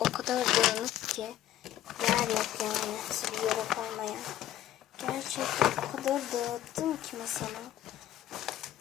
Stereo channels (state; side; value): quieter; right; 12.5 dB